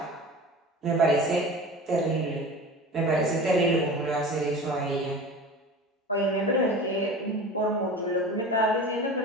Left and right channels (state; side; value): normal; both; correlation 0.35